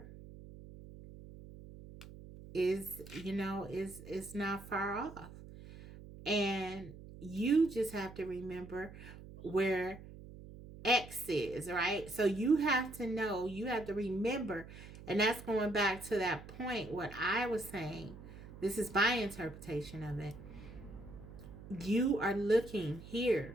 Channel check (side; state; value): right; noise; hum, 15 dB below the sound